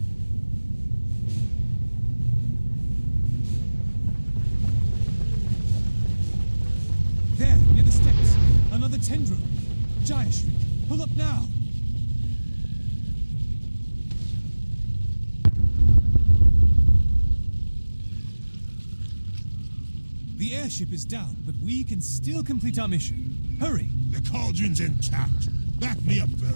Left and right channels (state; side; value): inverted; both; correlation -1.00